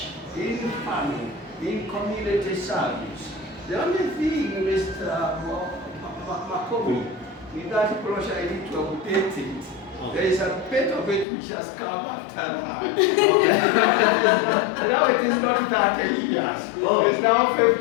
in family, in community service. The only thing, Mr. Makobi, in that brochure I need to update it. There is a bit of it which has come after that. Now it is not 30 years. It's now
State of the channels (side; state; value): right; drops out; at 11.2 s